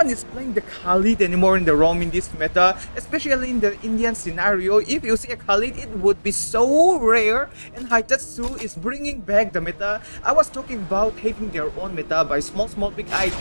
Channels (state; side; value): inverted; both; correlation -1.00